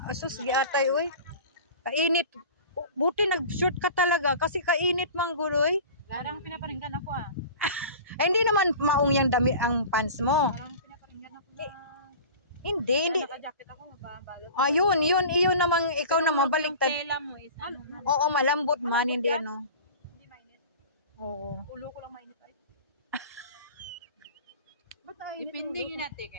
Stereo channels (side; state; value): both; inverted; correlation -0.38